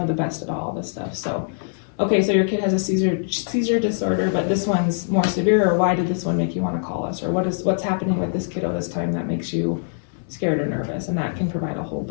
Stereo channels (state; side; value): silent; right; digital silence